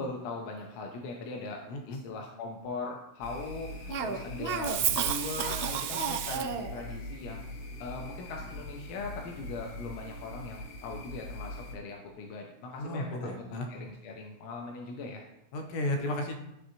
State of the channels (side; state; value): right; late; 16 ms